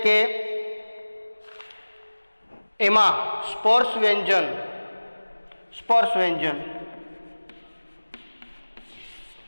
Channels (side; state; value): both; inverted; correlation -1.00